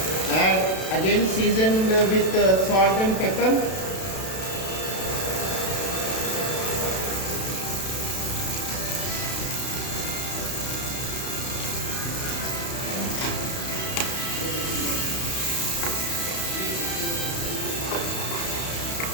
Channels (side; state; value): right; late; 32 ms